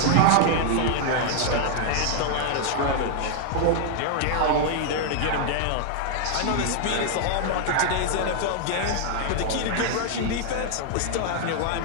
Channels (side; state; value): both; different; correlation 0.00